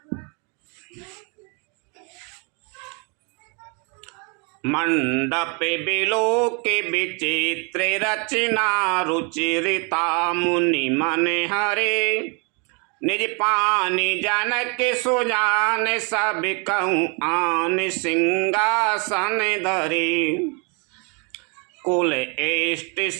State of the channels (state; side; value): quieter; left; 33.8 dB